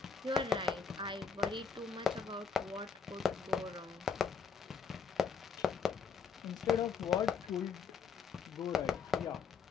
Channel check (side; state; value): right; quieter; 5.9 dB